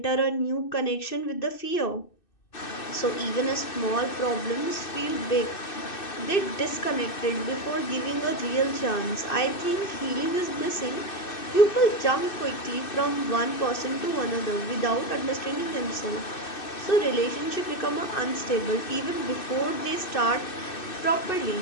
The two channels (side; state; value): right; late; 2.6 ms